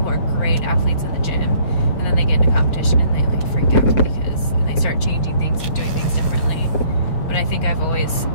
are great athletes in the gym, and then they get into competition and they like freak out and they start changing things and doing things differently. But I think I've always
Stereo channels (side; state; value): right; late; 6.3 ms